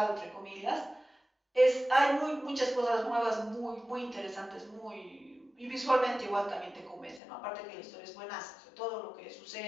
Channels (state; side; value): drops out; right; at 7.2 s